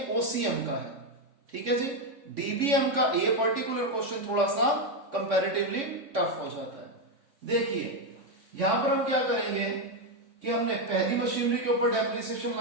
ओसीएम का है, ठीक है जी। डीबीएम का ये पर्टिकुलर क्वेश्चन थोड़ा सा कंपैरेटिवली टफ हो जाता है। देखिए यहां पर हम क्या करेंगे कि हमने पहली मशीनरी के ऊपर डेप्रिसिएशन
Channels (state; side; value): late; left; 3.5 ms